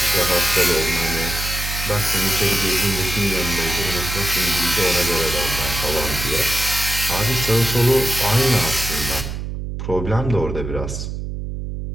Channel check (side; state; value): right; noise; hum, 6 dB below the sound